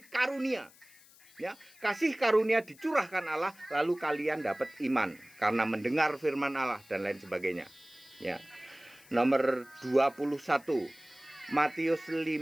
karunia. Ya, kasih karunia dicurahkan Allah, lalu kalian dapat iman karena mendengar firman Allah dan lain sebagainya. Ya. Nomor 21 Matius 5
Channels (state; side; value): noise; left; hiss, 25 dB below the sound